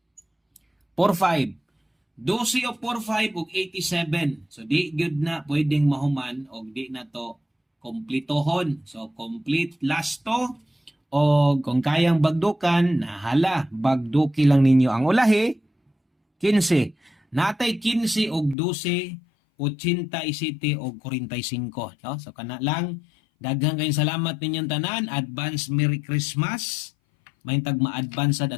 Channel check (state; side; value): drops out; right; at 18.6 s